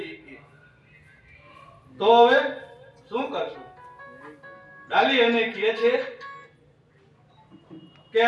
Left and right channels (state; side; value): identical; both; correlation 1.00